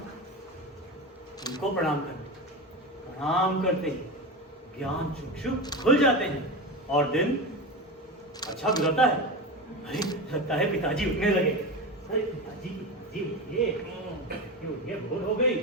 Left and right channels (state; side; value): normal; both; correlation 0.22